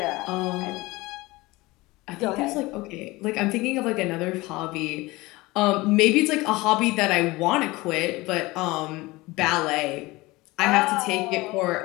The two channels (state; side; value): quieter; right; 21.3 dB